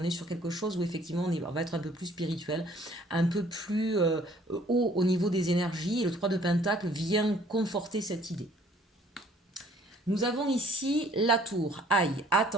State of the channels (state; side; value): normal; both; correlation 0.58